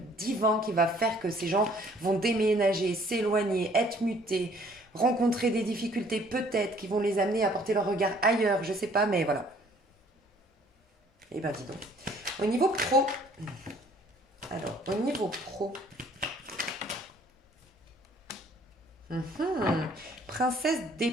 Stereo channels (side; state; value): both; normal; correlation 0.58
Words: qui va faire que ces gens vont déménager, s'éloigner, être mutés, rencontrer des difficultés peut-être qui vont les amener à porter leur regard ailleurs, je sais pas, mais voilà. Eh ben dis donc. Au niveau pro, alors au niveau pro, princesse